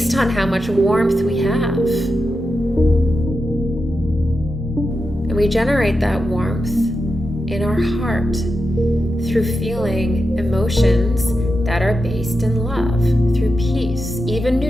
on how much warmth we have. And we generate that warmth in our heart through feeling emotions that are based in love, through peace, even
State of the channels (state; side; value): normal; both; correlation 0.89